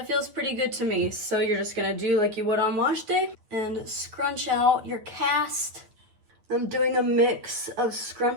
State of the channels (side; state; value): left; late; 9.3 ms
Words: feels pretty good to me. So you're just gonna do like you would on wash day and scrunch out your cast. I'm doing a mix of